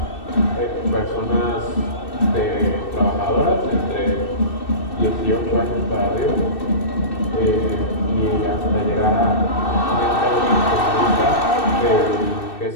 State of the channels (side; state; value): right; late; 2.6 ms